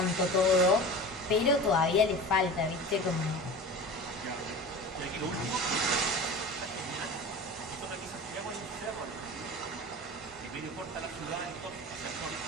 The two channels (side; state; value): both; normal; correlation 0.34